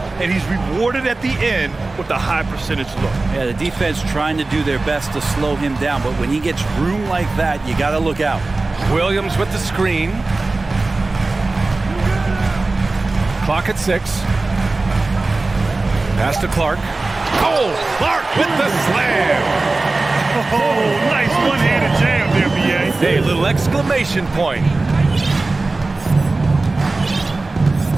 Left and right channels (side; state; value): left; quieter; 3.3 dB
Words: And he's rewarded at the end with a high percentage look. Yeah, the defense trying to do their best to slow him down. But when he gets room like that, you got to look out. Williams with the screen. Clock at 6. Pass to Clark. Oh, Clark with the slam. Oh, nice one-handed jam there, B.A. Hey, little exclamation point.